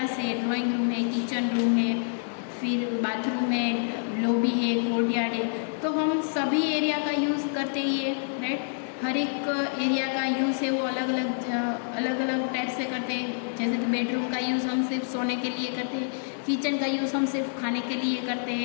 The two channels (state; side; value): silent; right; digital silence